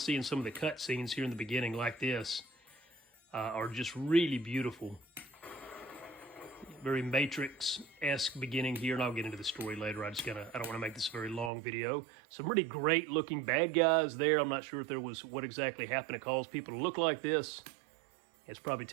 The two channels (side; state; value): left; drops out; at 11.5 s